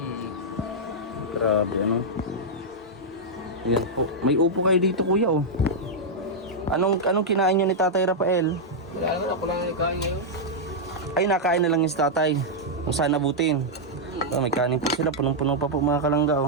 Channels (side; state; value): both; normal; correlation -0.06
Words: Grabe Ayan po. May upo kayo dito kuya oh. Anong kinain niyo ni Tatay Rafael? Wala naman, ako lang nagkain ngayon. Ay nakain na lang yung si Tatay. Kung saan nabutin. May kanin po sila. Punong-puno pa po mga kalangga